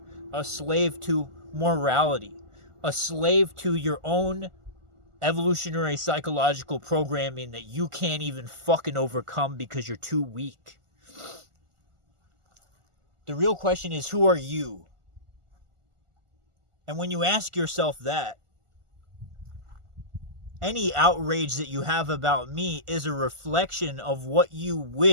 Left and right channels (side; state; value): left; late; 1.4 ms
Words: a slave to morality, a slave to your own evolutionary psychological programming that you can't even fucking overcome because you're too weak. The real question is, who are you? And when you ask yourself that, any outrage that you have about me is a reflection of what you